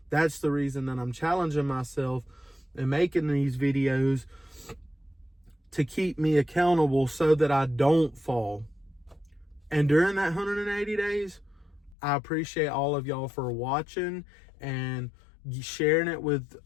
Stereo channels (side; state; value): right; drops out; at 12.0 s